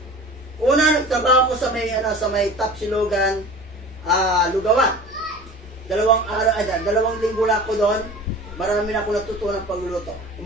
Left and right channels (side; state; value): both; normal; correlation 0.39